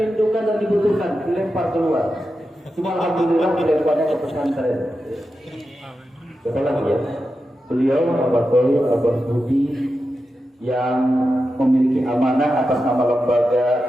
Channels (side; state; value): both; normal; correlation 0.90